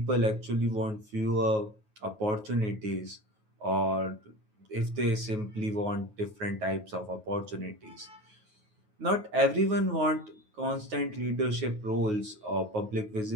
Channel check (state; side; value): late; left; 9.4 ms